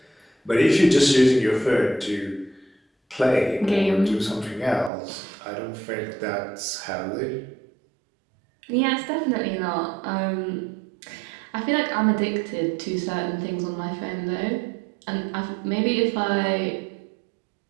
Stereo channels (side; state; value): left; drops out; at 4.9 s